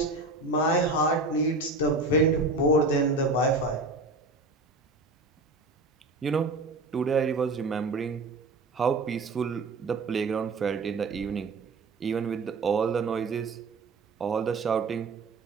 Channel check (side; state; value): left; quieter; 3.2 dB